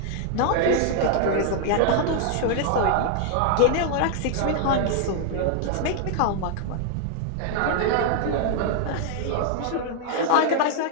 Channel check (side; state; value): both; different; correlation 0.00